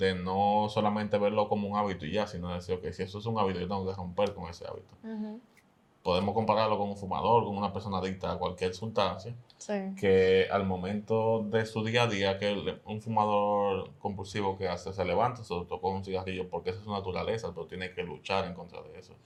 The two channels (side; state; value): both; identical; correlation 1.00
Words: no solamente verlo como un hábito y ya, sino decir, ok, si eso es un hábito, yo tengo que romper con ese hábito. Podemos compararlo con un fumador, con una persona adicta a cualquier sustancia, que al momento de su día a día, que un fumador compulsivo que hace, se levanta, se tocó un cigarrillo porque esa es su naturaleza, pero tiene que luchar en contra de eso.